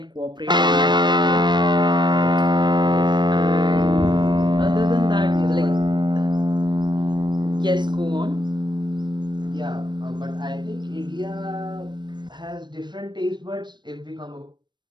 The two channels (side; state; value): left; late; 0.22 ms